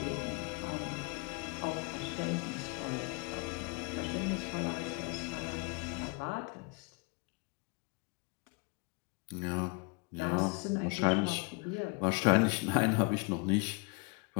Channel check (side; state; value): right; quieter; 30.1 dB